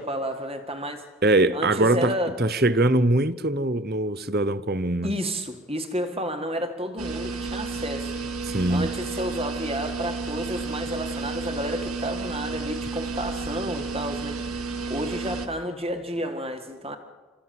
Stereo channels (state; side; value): normal; both; correlation 0.46